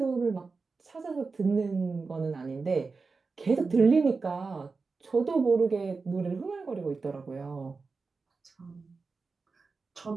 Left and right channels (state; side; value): quieter; left; 4.4 dB